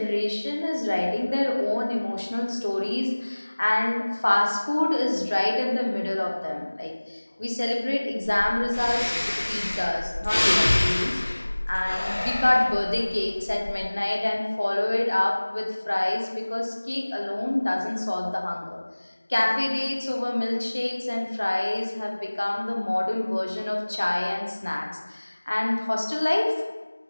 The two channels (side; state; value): both; inverted; correlation -1.00